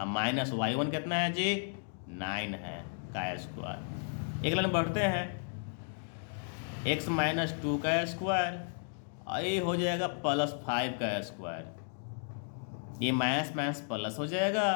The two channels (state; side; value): silent; right; 55 dB below the other